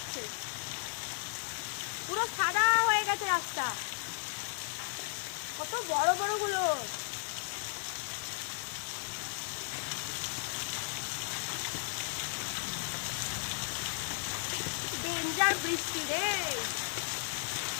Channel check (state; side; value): silent; right; digital silence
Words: পুরো সাদা হয়ে গেছে রাস্তা। কত বড় বড় গুলো। ডেঞ্জার বৃষ্টি রে।